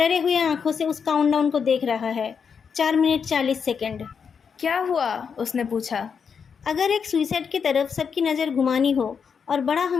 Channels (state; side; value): quieter; right; 6.4 dB